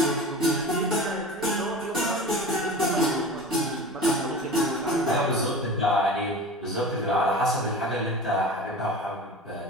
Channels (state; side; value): normal; both; correlation 0.34